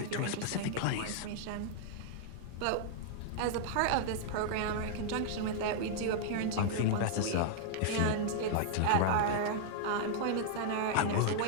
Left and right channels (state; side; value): different; both; correlation -0.01